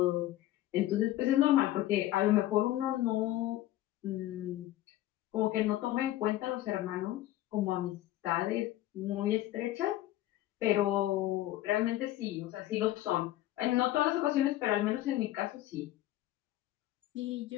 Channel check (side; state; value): right; quieter; 14.7 dB